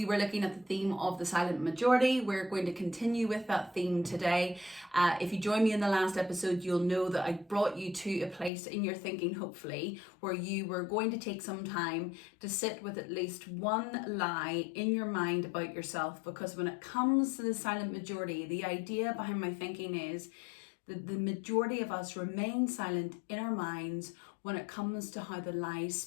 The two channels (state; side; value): drops out; right; at 8.5 s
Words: were looking at the theme of the silent majority. We're going to continue with that theme today. If you joined me in the last episode, you'll know that I brought you to a place in your thinking, hopefully, where you were going to take some time to sit with at least one lie in your mind about yourself. Because when it comes to the silent majority, the idea behind my thinking is that the majority of us remain silent in our minds when it comes to how the lies